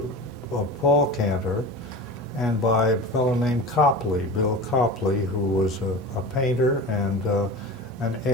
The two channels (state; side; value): normal; both; correlation 0.32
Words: Paul Cantor, and by a fellow named Copley, Bill Copley, who was a painter and an